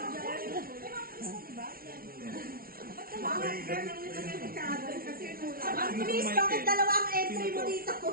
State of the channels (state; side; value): late; left; 0.43 ms